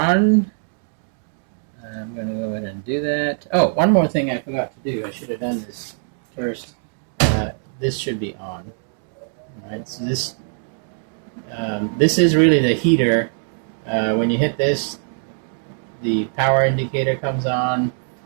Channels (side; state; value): left; silent; 64 dB below the other